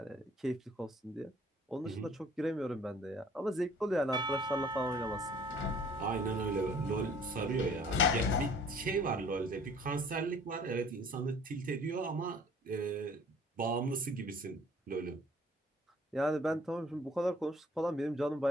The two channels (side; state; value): both; normal; correlation 0.54